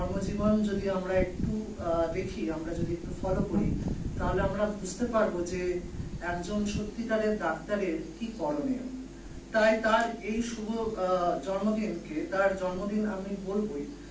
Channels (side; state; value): both; identical; correlation 1.00